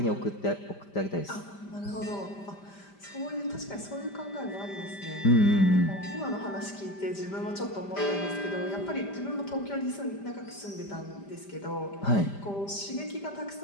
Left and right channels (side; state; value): right; late; 5.0 ms